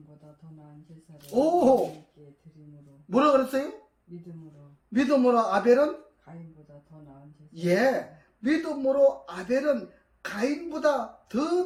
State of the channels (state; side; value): identical; both; correlation 1.00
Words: 더 나은 제사를 오! 하나님께 드림으로. 뭐라 그랬어요? 믿음으로 아벨은? 가인보다 더 나은 제사. 예, 믿음으로 아벨은 가인보다